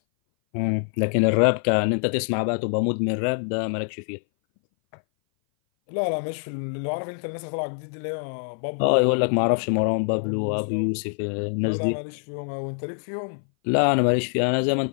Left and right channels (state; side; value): silent; right; 59 dB below the other